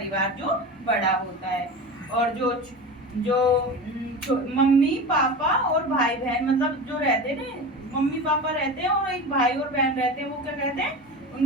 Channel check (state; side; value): normal; both; correlation 0.29